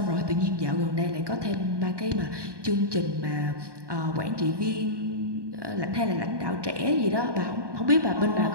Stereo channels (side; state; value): left; late; 1.2 ms